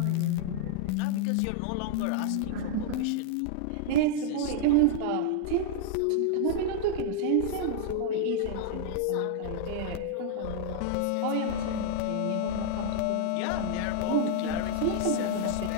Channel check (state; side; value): different; both; correlation 0.00